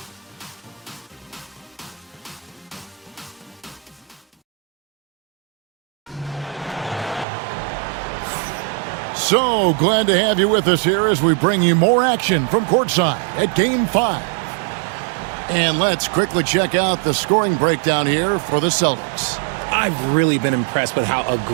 So glad to have you with us here as we bring you more action from courtside at Game 5. And let's quickly check out the scoring breakdown here for the Celtics. I've really been impressed with how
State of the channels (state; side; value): drops out; left; at 7.2 s